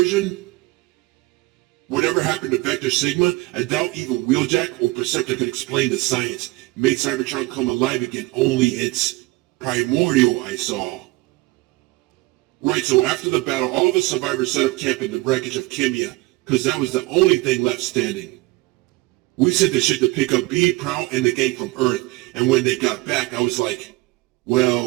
Whatever happened to Vector Sigma, I doubt even Wheeljack or Perceptor could explain the science. It made Cybertron come alive again, only it's primordial, I saw. Right, so after the battle, all of the survivors set up camp in the wreckage of Kimia, because that was the only thing left standing. We sent the ship to pick up B, Prowl, and the gang from Earth, and when they got back, I was like,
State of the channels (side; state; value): left; quieter; 21.4 dB